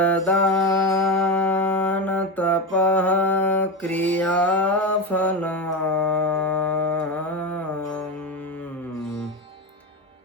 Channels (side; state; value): both; normal; correlation 0.17